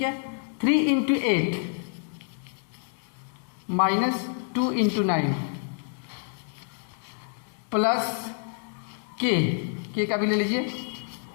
है। 3 इंटू 8 माइनस 2 इंटू 9 प्लस के का भी ले लीजिए।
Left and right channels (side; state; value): right; silent; 60 dB below the other